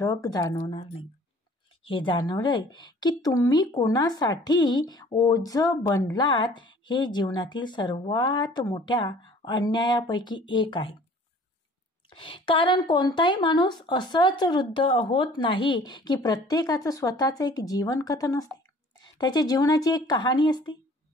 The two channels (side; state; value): both; normal; correlation 0.51